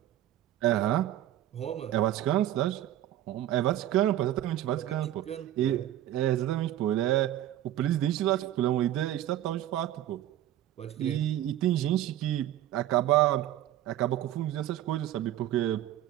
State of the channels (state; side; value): quieter; left; 12.8 dB